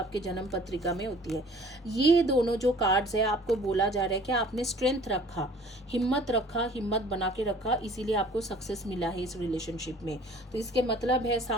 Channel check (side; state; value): both; normal; correlation 0.50